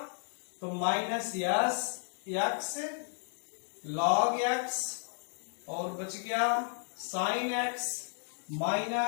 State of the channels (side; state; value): right; silent; digital silence